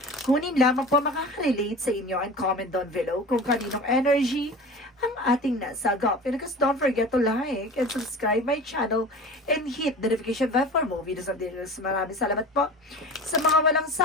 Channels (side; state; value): both; normal; correlation 0.36